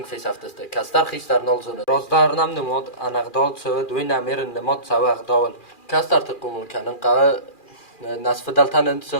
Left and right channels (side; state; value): right; late; 2.4 ms